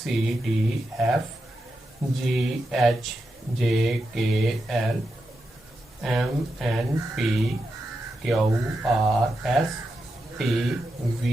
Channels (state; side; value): normal; both; correlation 0.87